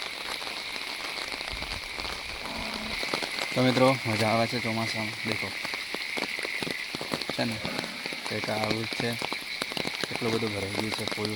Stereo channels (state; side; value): identical; both; correlation 1.00